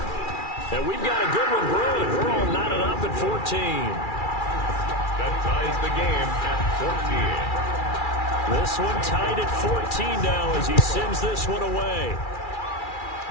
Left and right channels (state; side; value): late; right; 2.3 ms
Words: And we've got a good one brewing. We're all knotted up at 14. That ties the game at 14. This one tied at 14 now as he sends this one away.